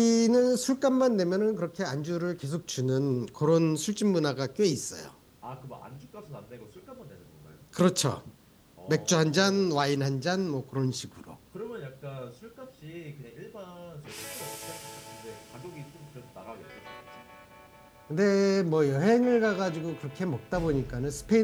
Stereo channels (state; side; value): identical; both; correlation 1.00